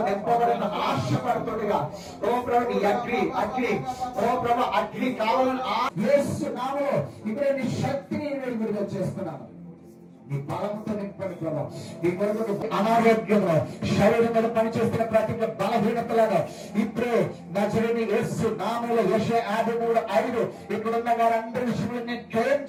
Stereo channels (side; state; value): both; identical; correlation 1.00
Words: నింపబడిన ఆశపడుతుండగా ఓ ప్రభు నీ అగ్ని కావాలని యేసు నామములో ఇప్పుడే నీ శక్తిని విడుదల చేస్తున్నాను. నీ బలంతో నింపండి ప్రభు. నీ కొరకు అనారోగ్యంలో శరీరం మీద పనిచేస్తున్న ప్రతి బలహీనతలను ఇప్పుడే నజరేయుడైన యేసు నామములో యెషయా 53:5 ఇక్కడున్న వారందరి విషయంలో నేను క్లెయిమ్